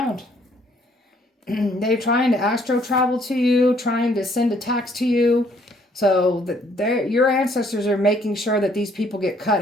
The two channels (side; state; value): both; normal; correlation 0.65